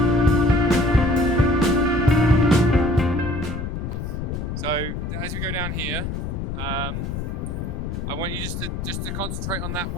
So as we go down here, I want you just to concentrate on that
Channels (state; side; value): noise; left; rumble, 4 dB below the sound